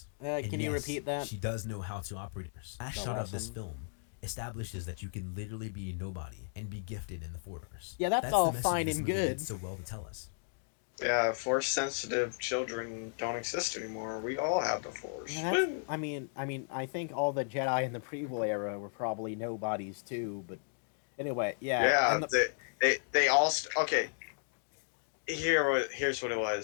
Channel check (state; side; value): silent; right; digital silence